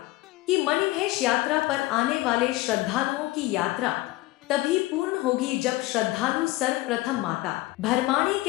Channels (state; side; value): quieter; right; 18.7 dB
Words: कि मणिमहेश यात्रा पर आने वाले श्रद्धालुओं की यात्रा तभी पूर्ण होगी जब श्रद्धालु सर्वप्रथम माता भरमाणी